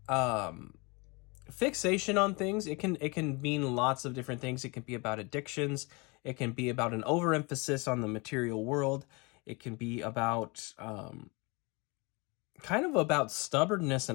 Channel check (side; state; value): right; quieter; 28.5 dB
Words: fixation on things. It can mean lots of different things. It can be about addictions. It can be about an overemphasis on the material world. It can be about kind of about stubbornness